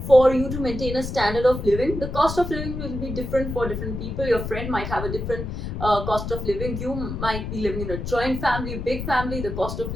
for you to maintain a standard of living. The cost of living will be different for different people. Your friend might have a different cost of living. You might be living in a joint family, big family. The cost of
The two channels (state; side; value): noise; left; rumble, 6 dB below the sound